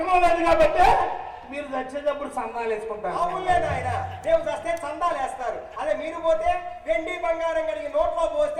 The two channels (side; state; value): both; identical; correlation 1.00